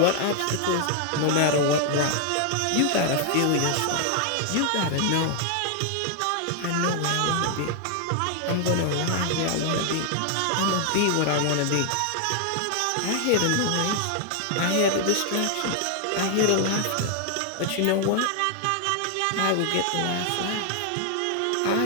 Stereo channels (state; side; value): different; both; correlation 0.00